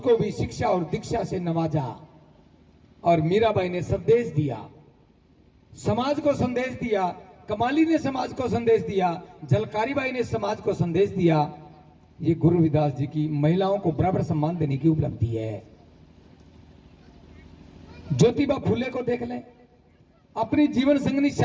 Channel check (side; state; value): both; identical; correlation 1.00